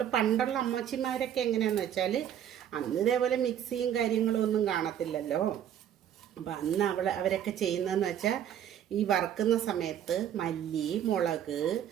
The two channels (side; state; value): left; quieter; 10.0 dB